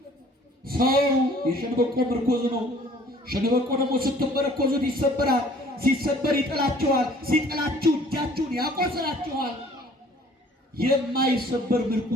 ሰው የሸንበቆ ምርኮዝ ነው። ሸንበቆ ደግሞ ስትመረኮዙት ይሰበራል። ሲሰበር ይጥላችኋል። ሲጥላችሁ እጃችሁን ያቆስላችኋል። የማይሰበር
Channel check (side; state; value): both; normal; correlation 0.54